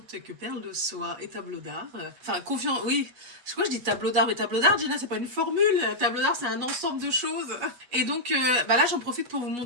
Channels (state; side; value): late; left; 8.3 ms